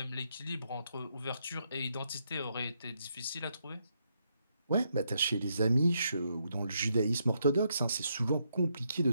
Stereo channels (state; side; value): inverted; both; correlation -0.78